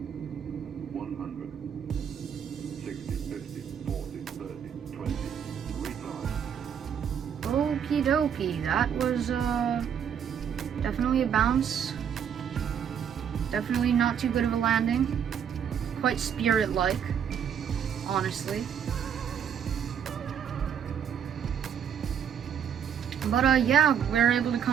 100, 60, 50, 40, 30, 20, retard. Okie dokie, that was definitely a bounce. Definitely not too good of a landing. Quite Spirit-like, honestly. But yeah, we're able to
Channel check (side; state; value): left; quieter; 8.2 dB